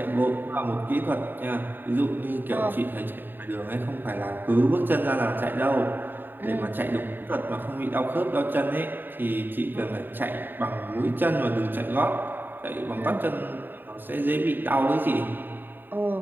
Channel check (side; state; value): left; late; 0.093 ms